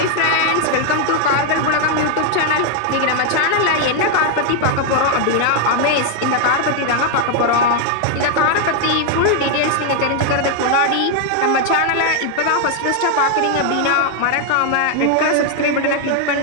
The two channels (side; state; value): both; different; correlation 0.00